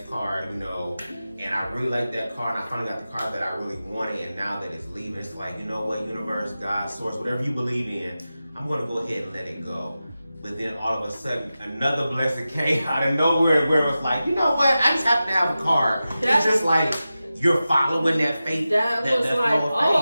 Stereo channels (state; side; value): inverted; both; correlation -0.94